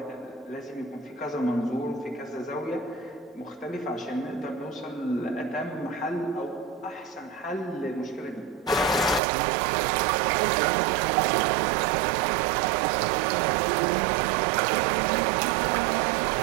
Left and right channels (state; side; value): drops out; left; at 9.2 s